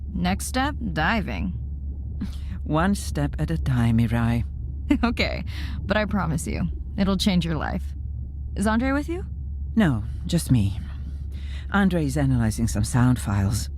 Next step, diving. One step at a time, Mirai. Okay, but I promise you, it'll change your life. Is Andre with you? No, just me. Andre is analyzing some sound files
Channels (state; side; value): identical; both; correlation 1.00